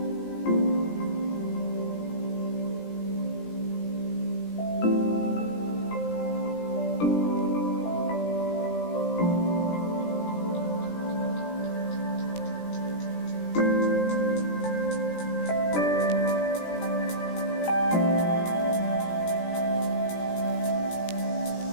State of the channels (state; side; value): late; right; 17 ms